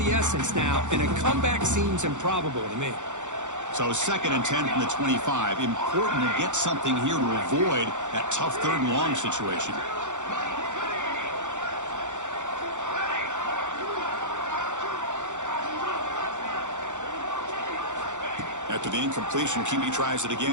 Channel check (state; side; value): late; left; 0.85 ms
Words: essence now, and a comeback seems improbable to me. So 2nd and 10 from the 25. Important to get something here to avoid that tough 3rd and long situation. After the incompletion, QB tries it